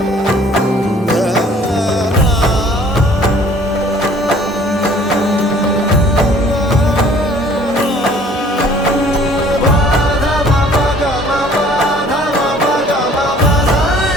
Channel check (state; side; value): normal; both; correlation 0.54